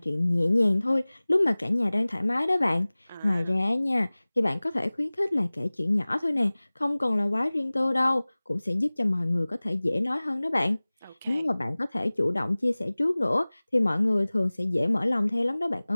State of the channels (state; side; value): inverted; both; correlation -1.00